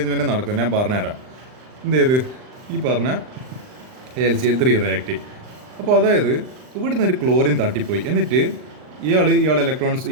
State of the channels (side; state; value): left; late; 39 ms